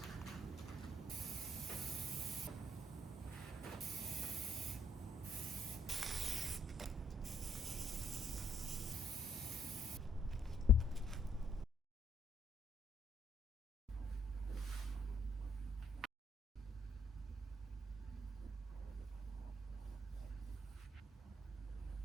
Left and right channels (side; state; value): both; normal; correlation 0.68